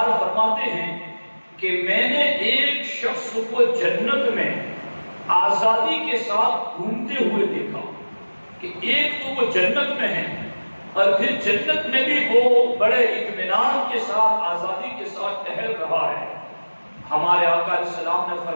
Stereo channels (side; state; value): both; inverted; correlation -1.00